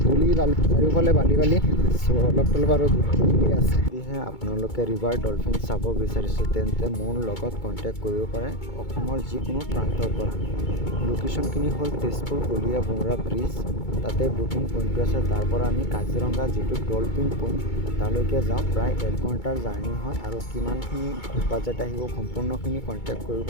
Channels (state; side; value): late; right; 2.2 ms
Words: ধূলি বালি চাৰিওফালে বালি অলপ আৰু ধূলি আছে। যদিহে আপোনালোকে ৰিভাৰ ডলফিন চাব বিচাৰিছে তেন্তে মোৰ লগত কণ্টেক্ট কৰিব পাৰে অসমৰ যিকোনো প্ৰান্তৰ পৰা। লোকেশ্যনখিনি হ'ল তেজপুৰ কলীয়া বুমৰা ব্ৰিজ, তাতে বুকিং পইণ্টটো আছে। তাৰ পৰা আমি কাজিৰঙা যিটো ডলফিন পইণ্ট তালৈকে যাওঁ, প্ৰায় 1 ঘণ্টাৰ জাৰ্ণি হয়। আৰু কিমানখিনি বাজেট আহিব সম্পূৰ্ণখিনি কণ্টেক্ট কৰিব,